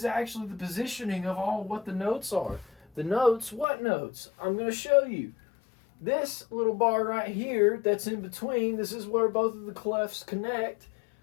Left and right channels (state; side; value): drops out; right; at 3.7 s